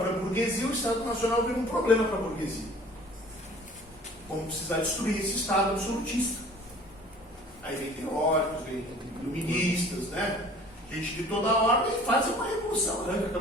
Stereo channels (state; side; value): normal; both; correlation 0.49